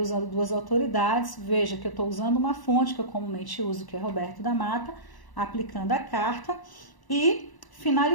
duas autoridades. Veja que eu estou usando uma fonte que eu comumente uso, que é Roberto da Mata, aplicando a carta. E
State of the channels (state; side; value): late; right; 1.0 ms